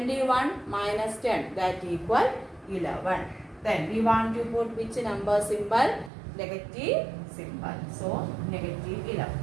minus 10, that equal 11. Then we want to put which number symbol? Negative symbol. So negative 11.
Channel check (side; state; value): left; drops out; at 6.1 s